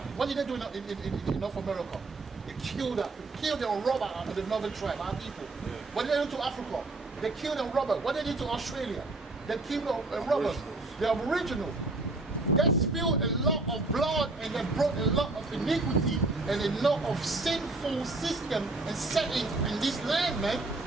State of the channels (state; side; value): quieter; left; 3.2 dB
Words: did they do in North America? They killed and robbed the northern tribe, our people. Yeah. What did they do to Africa? They killed and robbed. What did they do to Australia? They killed and robbed the Aboriginals. They spilled a lot of blood, and they brought a lot of iniquity and a lot of sinful system and setting in this land, man,